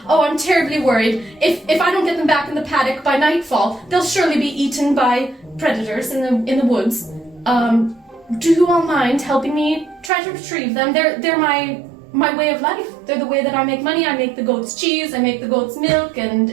terribly worried. If I don't get them back in the paddock by nightfall, they'll surely be eaten by predators in the woods. Do you all mind helping me try to retrieve them? They're my way of life. They're the way that I make money. I make the goat's cheese, I make the goat's milk,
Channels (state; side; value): drops out; left; at 10.1 s